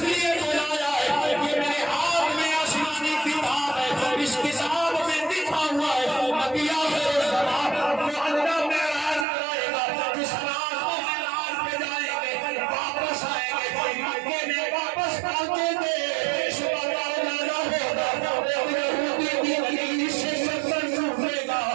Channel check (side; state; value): left; drops out; at 9.2 s